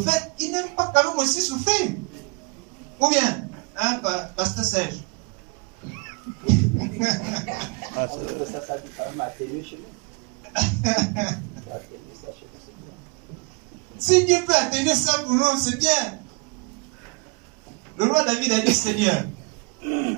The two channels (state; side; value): quieter; left; 31.7 dB